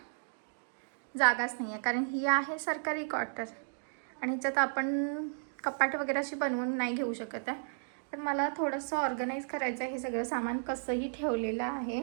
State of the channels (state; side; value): silent; left; digital silence